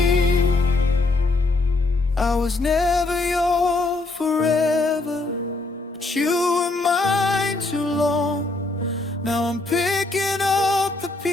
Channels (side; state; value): right; quieter; 3.2 dB